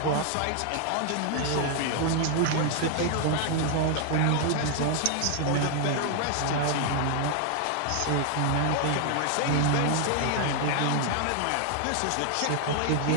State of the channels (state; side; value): different; both; correlation 0.00